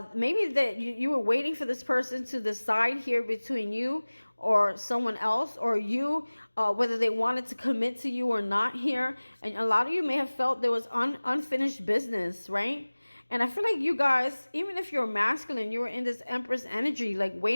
maybe that you were waiting for this person to decide here between you or someone else, or you, whether they wanted to commit to you or not here. And a lot of you may have felt there was unfinished business, right? And I feel like you guys, even if you're masculine, you were in this Empress energy, like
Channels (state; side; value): inverted; both; correlation -1.00